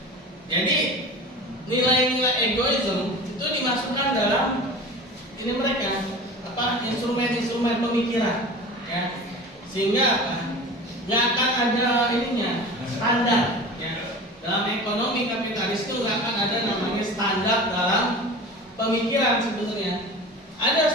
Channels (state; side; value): normal; both; correlation 0.36